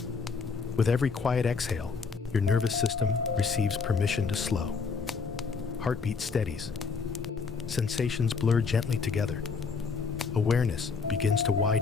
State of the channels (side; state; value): right; quieter; 5.1 dB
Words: With every quiet exhale, your nervous system receives permission to slow. Heartbeat steadies. Sensations blur gently together. Awareness begins to